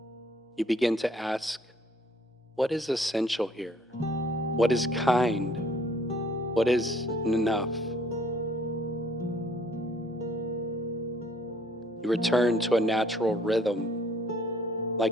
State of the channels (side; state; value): both; normal; correlation 0.61